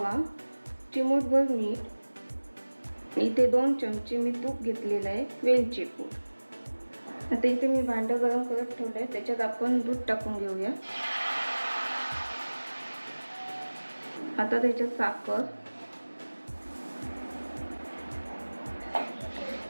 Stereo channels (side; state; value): both; inverted; correlation -1.00